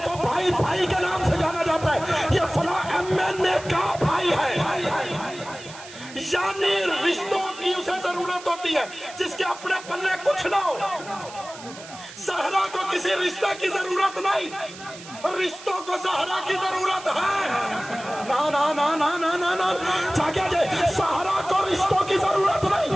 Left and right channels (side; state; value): right; noise; hiss, 16 dB below the sound